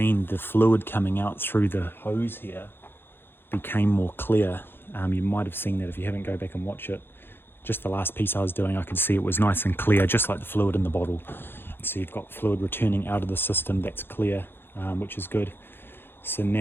the fluid coming out through the hose here became more clear. You might have seen that if you haven't, go back and watch it. Just the last piece I was doing, I could see it was nice and clear, just like the fluid in the bottle. So you've got fluid returning out of the system, that's clear, which is good. So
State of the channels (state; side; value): late; right; 0.10 ms